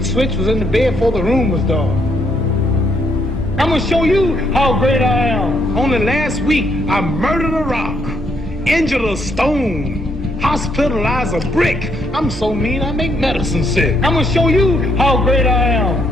switch, was in the bed before the room was dark. I'm gonna show you how great I am. Only last week I murdered a rock, injured a stone, hospitalized a brick. I'm so mean I make medicine sick. I'm gonna show you how great I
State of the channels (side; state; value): both; normal; correlation 0.73